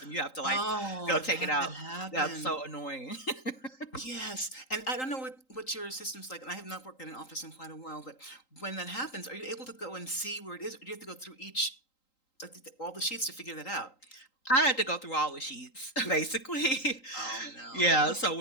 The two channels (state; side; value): late; right; 3.8 ms